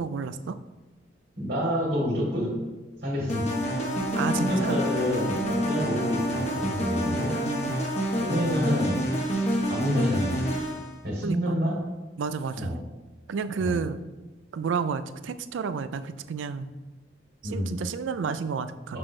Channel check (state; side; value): normal; both; correlation 0.60